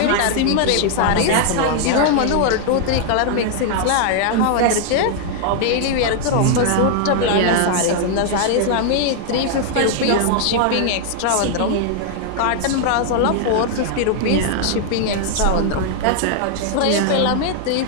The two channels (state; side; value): different; both; correlation 0.00